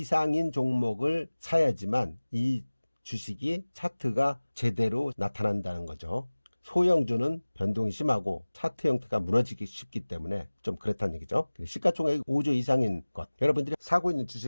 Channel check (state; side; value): inverted; both; correlation -1.00